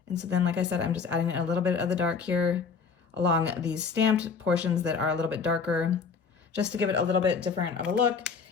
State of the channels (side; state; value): right; quieter; 5.5 dB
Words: And so then, like I said, I'm just adding a little bit of the dark here along these stamped portions that are a little bit darker, just to give it a little bit different of a look.